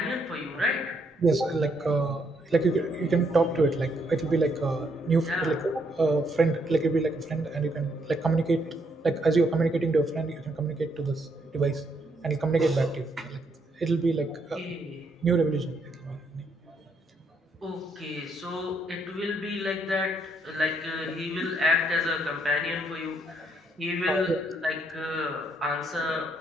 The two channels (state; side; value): normal; both; correlation 0.73